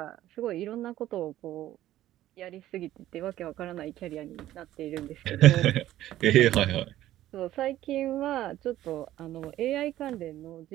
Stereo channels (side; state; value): left; quieter; 13.8 dB